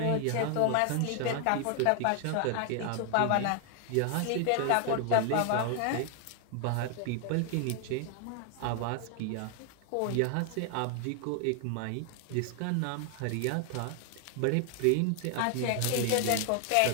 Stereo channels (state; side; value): different; both; correlation 0.00